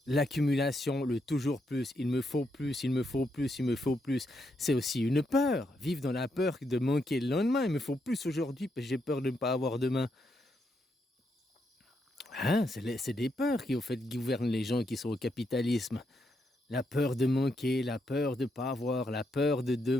L'accumulation, le toujours plus, il me faut plus, il me faut plus, il me faut plus. C'est aussi une peur. Vivre dans la peur de manquer le lendemain. Il me faut plus aujourd'hui parce que j'ai peur de ne pas avoir demain. Hein, c'est des peurs qui, au fait, gouvernent les gens qui sont au capitalisme. La peur de manquer, la peur de pas avoir, la peur de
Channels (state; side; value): normal; both; correlation 0.80